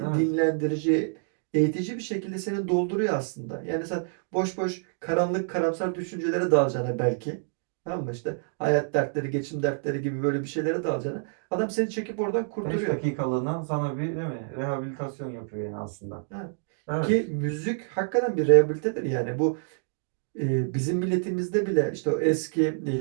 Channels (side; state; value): left; silent; digital silence